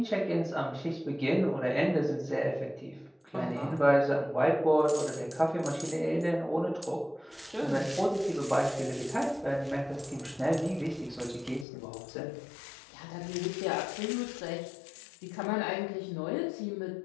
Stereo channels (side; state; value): right; drops out; at 11.7 s